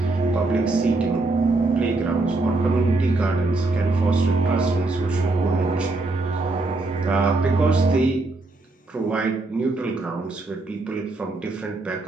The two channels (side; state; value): left; quieter; 3.2 dB